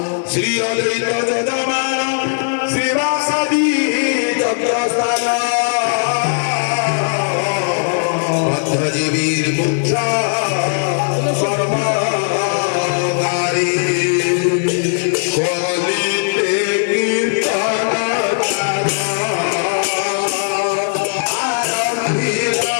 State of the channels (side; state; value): right; silent; 68 dB below the other